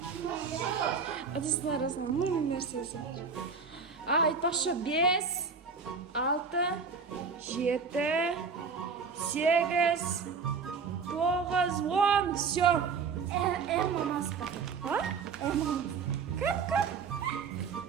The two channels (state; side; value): quieter; left; 5.3 dB